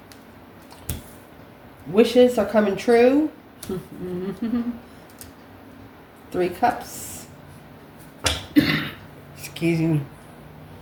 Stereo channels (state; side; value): identical; both; correlation 1.00